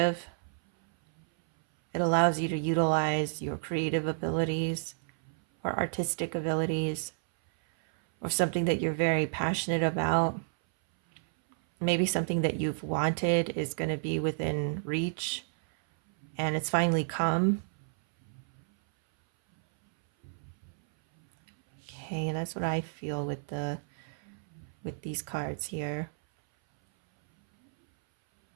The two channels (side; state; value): left; silent; 57 dB below the other